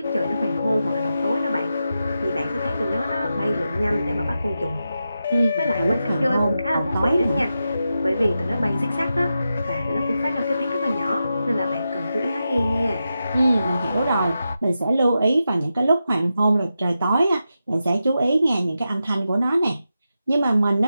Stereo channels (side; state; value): both; inverted; correlation -0.89